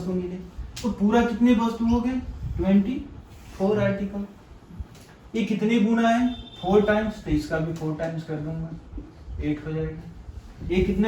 मिले, तो पूरा कितने वस्तु हो गए? 24 आर्टिकल। ये कितने गुना है? 4 टाइम्स, तो इसका भी 4 टाइम्स कर दूंगा, 8 हो जाएगा। ये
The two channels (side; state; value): both; identical; correlation 1.00